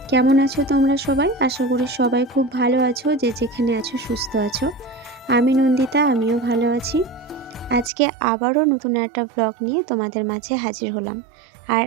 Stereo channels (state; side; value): drops out; left; at 7.9 s